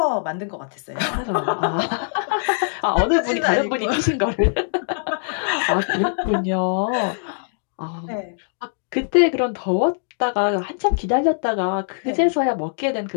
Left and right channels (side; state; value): right; silent; digital silence